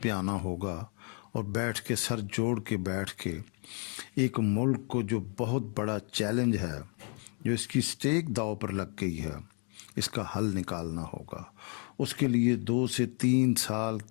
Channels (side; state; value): right; quieter; 39.7 dB